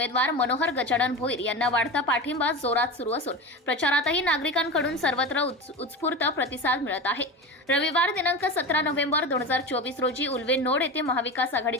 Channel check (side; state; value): both; normal; correlation 0.26